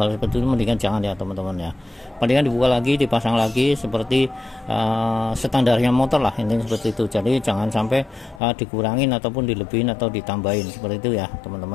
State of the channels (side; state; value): right; drops out; at 8.4 s